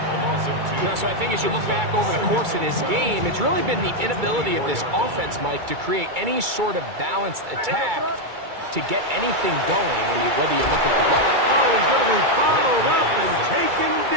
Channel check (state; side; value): late; left; 2.3 ms